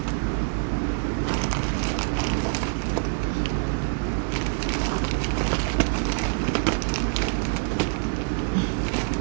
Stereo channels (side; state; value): left; silent; digital silence